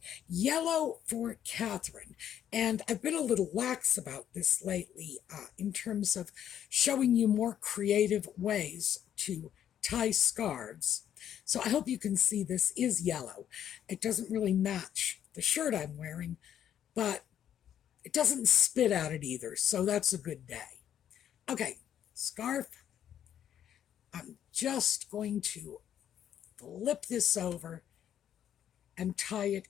yellow for Catherine. And I've been a little lax about this lately in terms of showing you more creative ways to tie scarves. So I hope you can see this is yellow. It doesn't really match the shirt I'm wearing, but it doesn't spit at it either, so that's a good day. Okay, scarf. I'm just going to flip this over and tie it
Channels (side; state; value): right; quieter; 10.0 dB